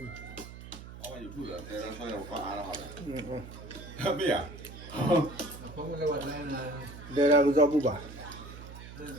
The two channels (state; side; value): noise; right; hum, 14 dB below the sound